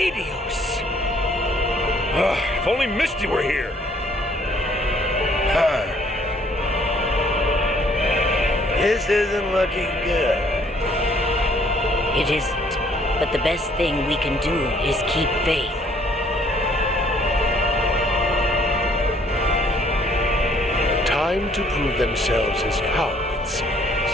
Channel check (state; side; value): normal; both; correlation 0.62